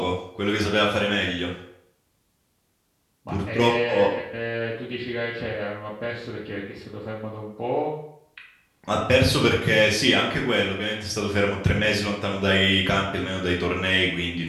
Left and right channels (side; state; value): both; identical; correlation 1.00